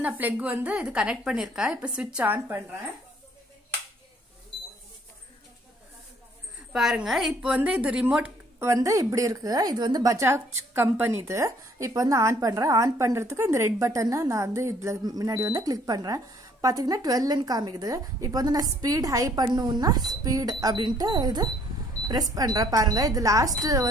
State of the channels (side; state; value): both; normal; correlation 0.62